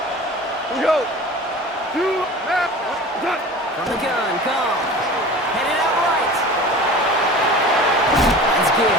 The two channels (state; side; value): normal; both; correlation 0.38